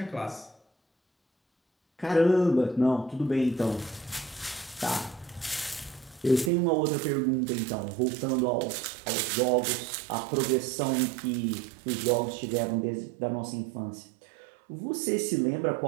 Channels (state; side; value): drops out; left; at 6.5 s